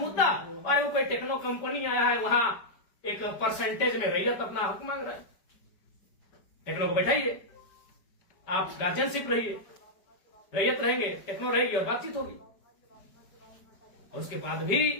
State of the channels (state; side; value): late; right; 5.0 ms